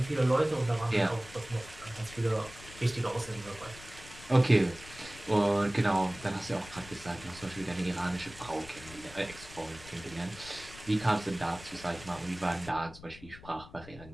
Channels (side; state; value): left; noise; rumble, 17 dB below the sound